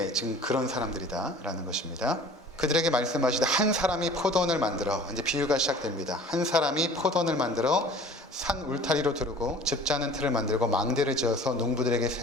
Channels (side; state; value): both; normal; correlation 0.46